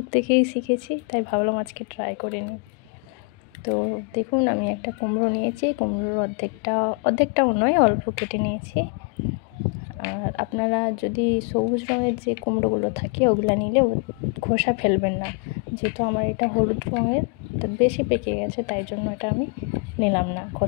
থেকেই শিখেছি, তাই ভাবলাম আজকে ট্রাই করে নিই। তো দেখুন, আমি একটা কুমড়ো নিয়েছি। কুমড়োর অর্ধেকটাও নয়, অল্প কেটে নিয়েছি। আর আপনারা যদি সবুজ রঙের যে কুমড়োগুলো থাকে ওগুলো নিলেও খোসা ফেলবেন না, যেহেতু আমার এটা হলুদ রঙের, তো বেশি পেকে গেছে, তাই জন্য এটা আমি নিলাম না,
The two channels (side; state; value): right; quieter; 33.1 dB